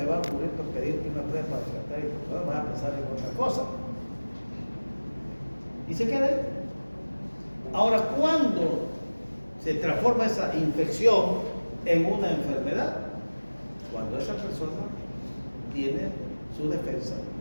ocurrir por pedirte una prueba para tratar y vas a pensar en otra cosa? Y se queda ahí. Ahora, ¿cuándo se transforma esa infección en una enfermedad? Cuando esa persona tiene su defensa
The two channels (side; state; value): both; inverted; correlation -1.00